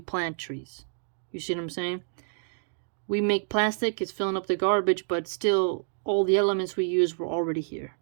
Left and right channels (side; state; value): left; silent; 59 dB below the other